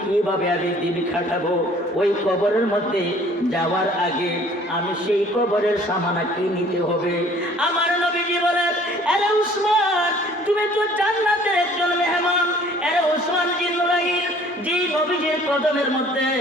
কিভাবে দিন কাটাবো? ওই কবরের মধ্যে যাওয়ার আগে আমি সেই কবরের সামানা কি নিতে হবে? আমার নবীজি বলেন, আরে উসমান, তুমি তো জান্নাতের একজন মেহমান। আরে উসমান জিন্নুরাইন, যে নবীজির কদমের মধ্যে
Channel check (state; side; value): normal; both; correlation 0.54